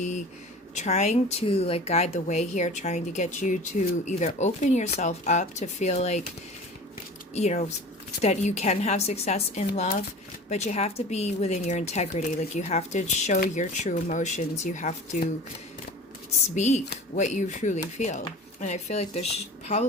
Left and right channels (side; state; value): both; normal; correlation 0.39